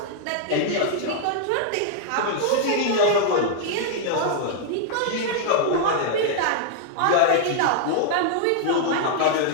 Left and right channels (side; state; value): both; different; correlation -0.01